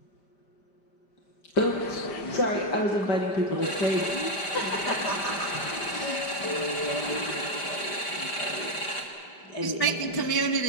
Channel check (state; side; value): late; right; 5.1 ms